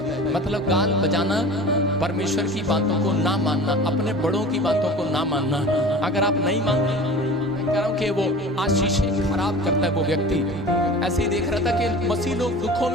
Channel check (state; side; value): normal; both; correlation 0.38